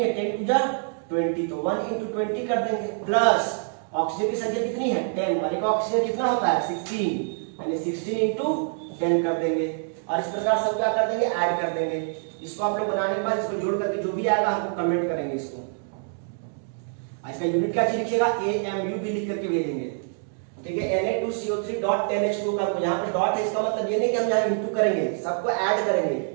है, 10 2 20, तो 1 इंटू 20 कर देंगे, प्लस ऑक्सीजन की संख्या कितनी है, 10, वाले का ऑक्सीजन कितना होता है, 16, यानी 16 इंटू 10 कर देंगे। और इस प्रकार सब क्या कर देंगे, ऐड कर देंगे। इसको आप लोग बनाने के बाद इसको जोड़ करके जो भी आएगा हमको कमेंट करेंगे इसको। इसका यूनिट क्या चीज लिखिएगा, AMU भी लिख करके भेजेंगे, ठीक है। Na2CO3 डॉट 10H2 का, यहाँ पे डॉट है, इसका मतलब ये नहीं कि हम यहाँ इंटू करेंगे, सबको ऐड करेंगे।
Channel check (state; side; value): silent; left; 61 dB below the other